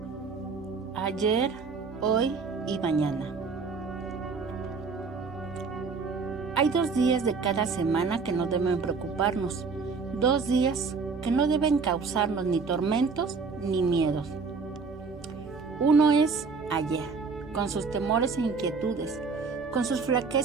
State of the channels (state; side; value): quieter; left; 4.8 dB